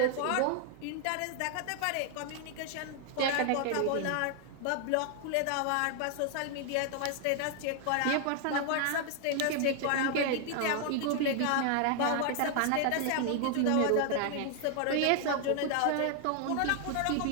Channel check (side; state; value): both; different; correlation 0.00